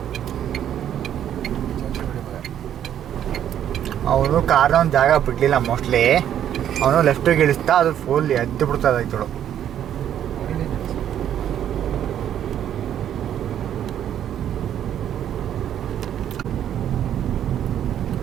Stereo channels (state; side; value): quieter; left; 10.2 dB